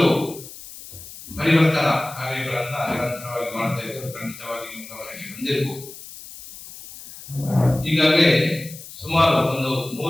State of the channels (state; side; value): noise; left; hiss, 15 dB below the sound